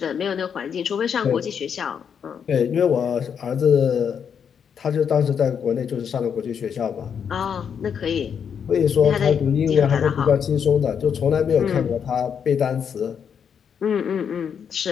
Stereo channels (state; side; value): quieter; right; 7.4 dB